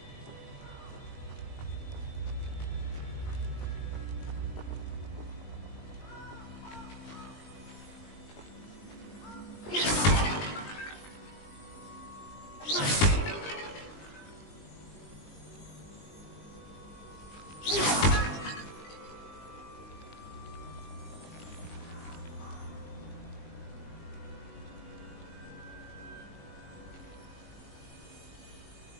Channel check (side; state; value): right; late; 20 ms